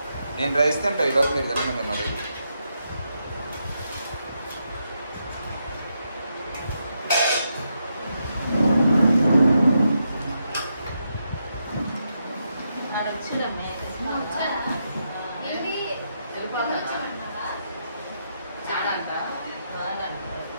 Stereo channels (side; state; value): both; inverted; correlation -0.82